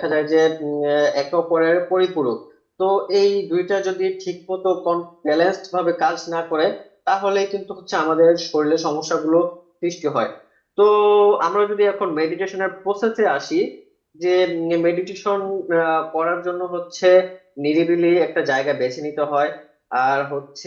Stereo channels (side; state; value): both; identical; correlation 1.00